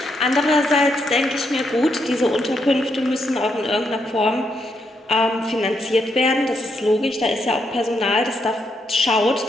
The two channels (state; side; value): normal; both; correlation 0.79